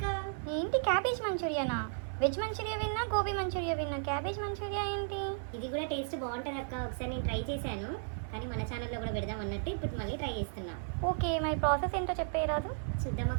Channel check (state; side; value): silent; left; digital silence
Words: ఏంటి క్యాబేజ్ మంచూరియానా? వెజ్ మంచూరియా విన్నా, గోబీ మంచూరియా విన్నా, క్యాబేజ్ మంచూరియా ఏంటి? ఇది కూడా టేస్ట్ బాగుంటుంది అక్క. ఒకసారి నేను ట్రై చేశాను, కానీ మన ఛానల్లో కూడా పెడదాం అన్నట్టు ఇప్పుడు మళ్ళీ ట్రై చేస్తున్నా. ఓకే, మరి ప్రాసెస్ ఏంటో చెప్పేయరాదు? చూద్దాం